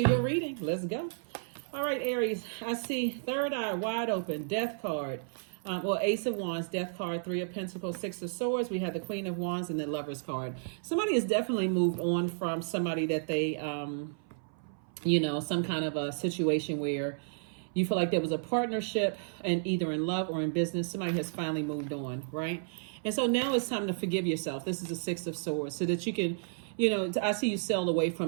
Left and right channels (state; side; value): silent; left; 56 dB below the other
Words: your reading. Let's go. All right, Aries, I see third eye wide open, death card. Ace of Wands, death card, Three of Pentacles, Six of Swords. We have the Queen of Wands and the Lover's card. Somebody has definitely moved on from somebody that they, some kind of a situation where you feel like there was a partnership and either in love or in business. Somebody has finally moved on, right? And so now it's time to forgive yourself. This is the Six of Swords so that you can, I see you sail away